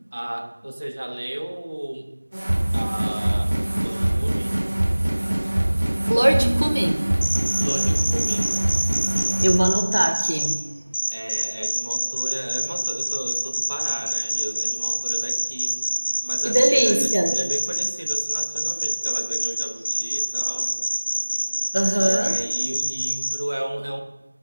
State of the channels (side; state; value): both; inverted; correlation -1.00